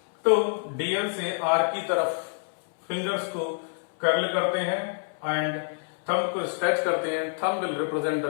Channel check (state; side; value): silent; right; 60 dB below the other